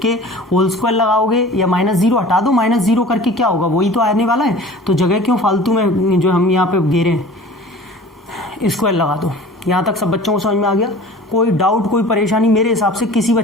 के होल स्क्वायर लगाओगे या माइनस 0 हटा दो, माइनस 0 करके क्या होगा वही तो आने वाला है, तो जगह क्यों फालतू में जो हम यहाँ पे घेरे हैं, स्क्वायर लगा दो। यहाँ तक सब बच्चों को समझ में आ गया? कोई डाउट कोई परेशानी मेरे हिसाब से किसी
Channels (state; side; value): normal; both; correlation 0.43